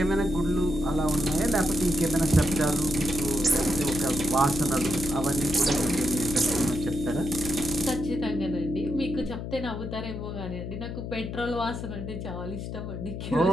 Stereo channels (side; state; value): left; noise; hum, 6 dB below the sound